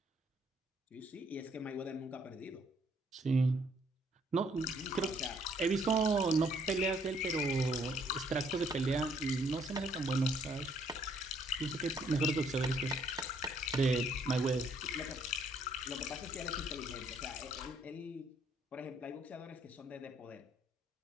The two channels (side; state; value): both; normal; correlation 0.66